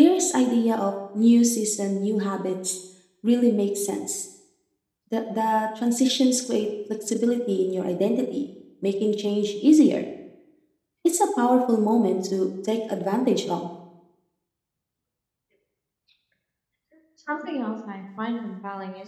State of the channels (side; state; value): both; identical; correlation 1.00